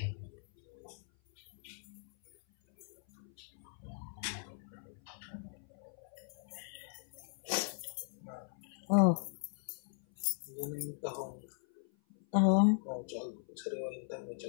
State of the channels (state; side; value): silent; right; 52 dB below the other